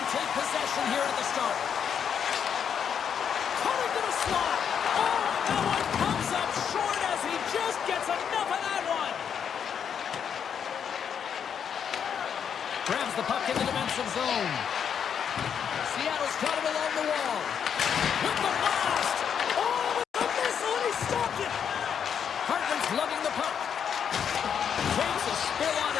take possession here at the start. Cutting to the slot. Oh, that one comes up short as he just gets enough of that one. Grabs the puck in the defensive zone. Seattle's got it along the wall. With the blast. Oh, with the missile, and he stopped it. Hartman's lugging the puck. Takes a spill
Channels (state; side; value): quieter; right; 7.8 dB